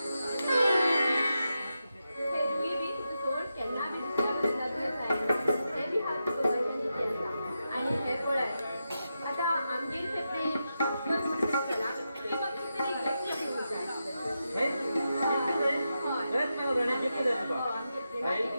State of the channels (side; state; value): both; inverted; correlation -0.88